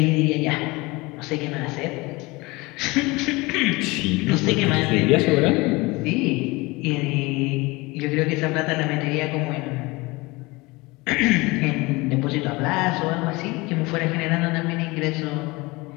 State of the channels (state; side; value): quieter; right; 23.4 dB